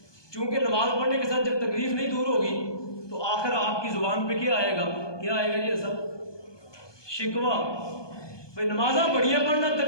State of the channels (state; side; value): late; right; 1.2 ms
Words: چونکہ نماز پڑھنے کے ساتھ جب تکلیف نہیں دور ہوگی تو آخر آپ کی زبان پہ کیا آئے گا یہ سب شکوہ، بھائی نمازاں بڑیاں پڑھنا